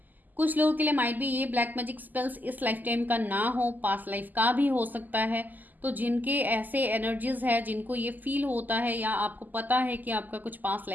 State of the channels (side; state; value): left; late; 0.084 ms